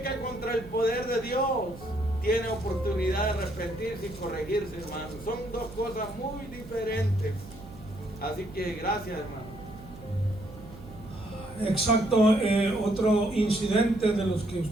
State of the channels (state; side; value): noise; right; hum, 17 dB below the sound